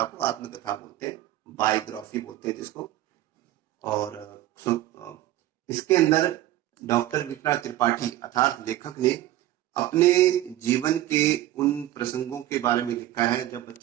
को आत्मकथा बोलते हैं, बायोग्राफी बोलते हैं जिसको। और इसके अंदर डॉक्टर विश्वनाथ त्रिपाठी अर्थात लेखक ने अपने जीवन के उन प्रसंगों के बारे में लिखा है जब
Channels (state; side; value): quieter; left; 14.3 dB